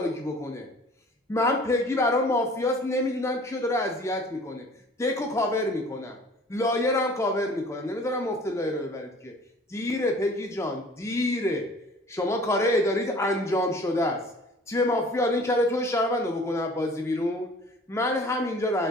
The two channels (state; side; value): normal; both; correlation 0.49